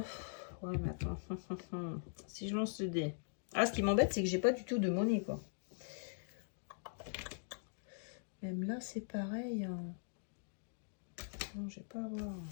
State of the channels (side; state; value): right; silent; digital silence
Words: mais attends. Si je lance le dé. Ah, ce qui m'embête, c'est que j'ai pas du tout de monnaie, quoi. Même là, c'est pareil. Hein. Non, je vais pas avoir.